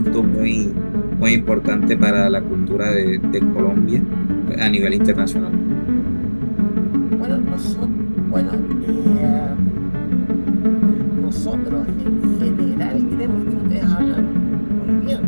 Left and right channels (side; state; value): both; inverted; correlation -1.00